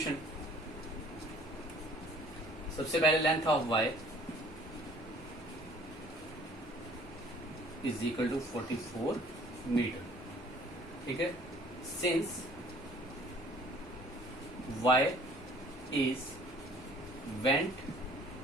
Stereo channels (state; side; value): normal; both; correlation 0.54